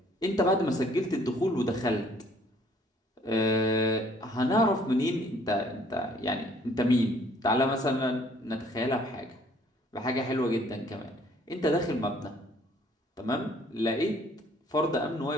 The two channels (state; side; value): normal; both; correlation 0.60